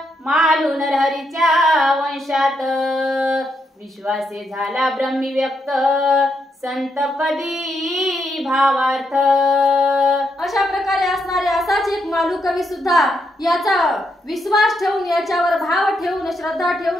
मालू नरहरीच्या वंशात. विश्वासे झाला ब्रह्मी व्यक्त, संतपदी भावार्थ. अशा प्रकारे असणारे असाच एक मालू कवी सुद्धा याचा विश्वास ठेवून, याच्यावर भाव ठेवून, श्रद्धा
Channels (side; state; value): both; normal; correlation 0.79